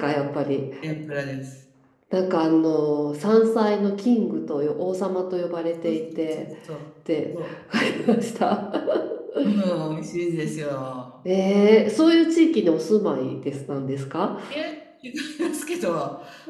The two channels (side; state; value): both; identical; correlation 1.00